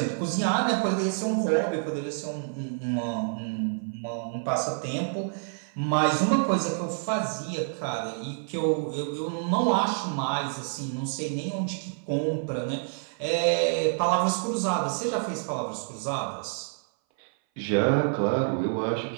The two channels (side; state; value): left; silent; 58 dB below the other